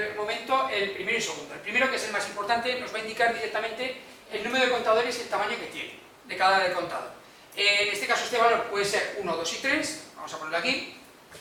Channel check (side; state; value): both; identical; correlation 1.00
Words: momento el primero y segundo. El primero, que es el más importante, nos va a indicar directamente el número de contadores y el tamaño que tiene de cada contador. En este caso este valor puede ser 1, 2 y 3, vamos a ponerlo aquí.